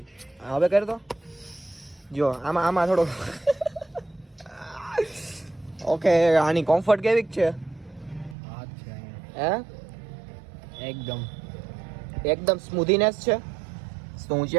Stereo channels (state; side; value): drops out; left; at 8.3 s